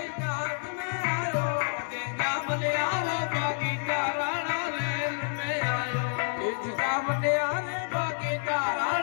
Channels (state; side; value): silent; right; digital silence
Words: जहाज में आयो जेजा बनिया रे बगीचा राणो जेजा बनिया रे बगीचा